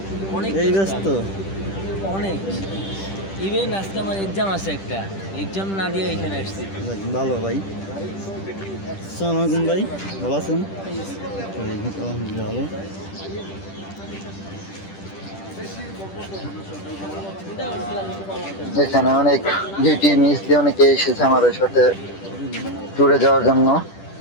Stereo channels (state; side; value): late; right; 10 ms